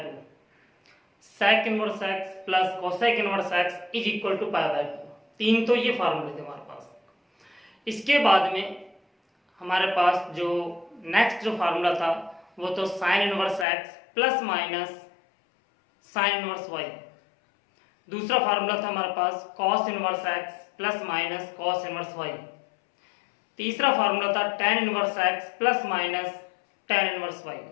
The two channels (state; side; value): drops out; right; at 13.7 s